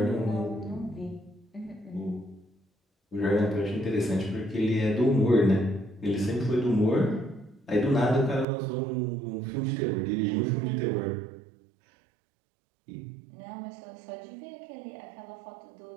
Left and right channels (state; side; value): drops out; left; at 8.5 s